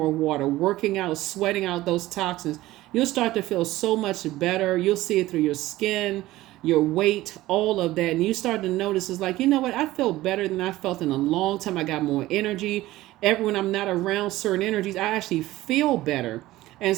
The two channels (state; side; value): quieter; left; 16.8 dB